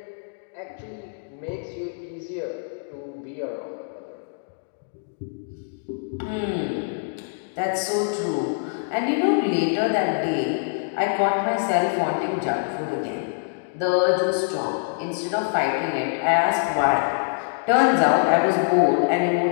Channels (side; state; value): right; silent; digital silence